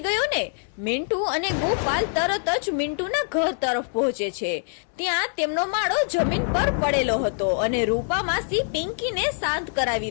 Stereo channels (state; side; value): silent; right; 62 dB below the other